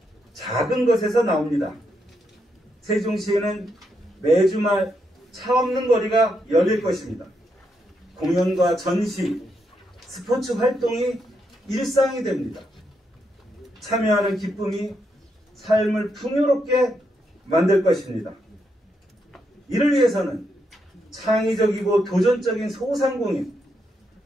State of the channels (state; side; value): normal; both; correlation 0.80